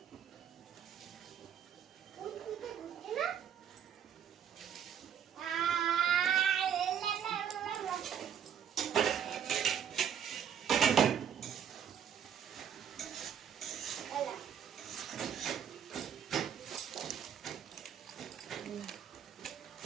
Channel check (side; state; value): left; quieter; 8.7 dB